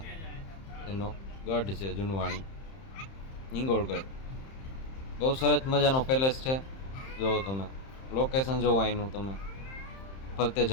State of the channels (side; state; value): right; late; 31 ms